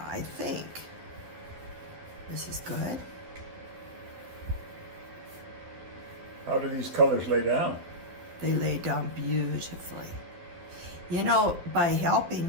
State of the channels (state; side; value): late; left; 12 ms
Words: I think this is good. How do these colors lay down? They lay down beautifully. You know, by